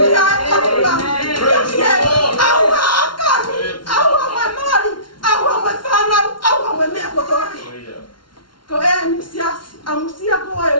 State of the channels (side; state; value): right; late; 0.72 ms